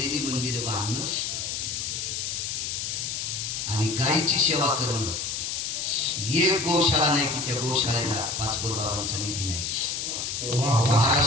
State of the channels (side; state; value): left; noise; hiss, 3 dB below the sound